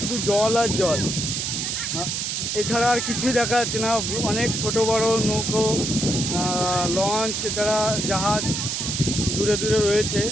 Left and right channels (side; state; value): right; noise; hiss, 2 dB below the sound